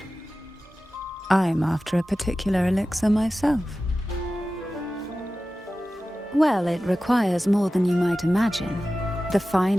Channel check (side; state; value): both; normal; correlation 0.95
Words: I'm after a particular elixir myself. Well, it requires more than you might imagine. The